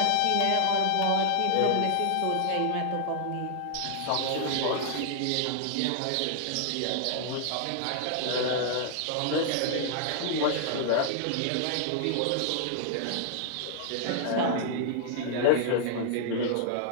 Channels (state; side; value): different; both; correlation -0.01